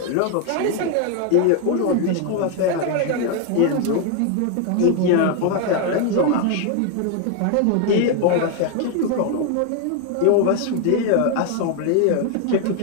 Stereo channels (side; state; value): both; different; correlation 0.01